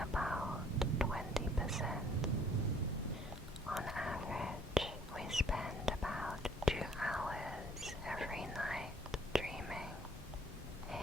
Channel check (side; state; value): both; normal; correlation 0.59